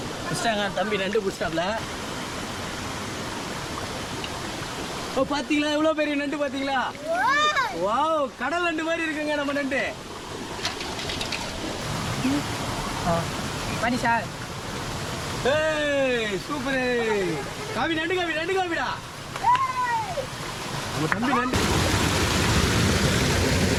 புஷ்டாங்க தம்பி நண்டு புஷ்டாப்ல. ஓ பார்த்தீங்களா எவ்வளோ பெரிய நண்டு பார்த்தீங்களா? வாவ், கடல் நண்டு மாதிரி இருக்குங்க நம்ம நண்டு. பண்ணி சார். ஏய் சூப்பர் காவி நண்டு காவிடா நம்ம தம்பி நண்டு.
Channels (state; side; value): identical; both; correlation 1.00